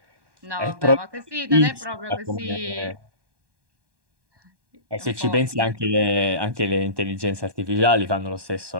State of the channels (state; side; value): late; left; 1.2 ms